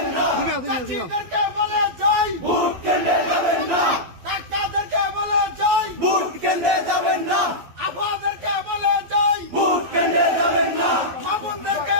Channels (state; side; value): late; left; 12 ms